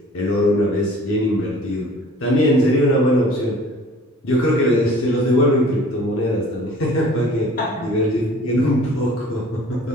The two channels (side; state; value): both; normal; correlation 0.49